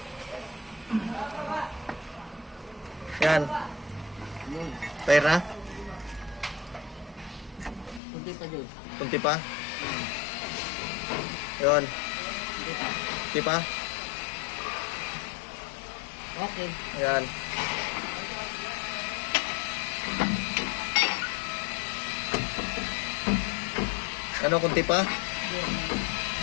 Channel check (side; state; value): right; drops out; at 8.0 s